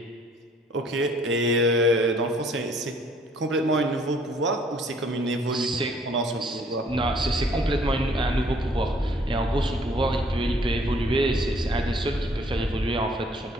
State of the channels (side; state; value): both; normal; correlation 0.60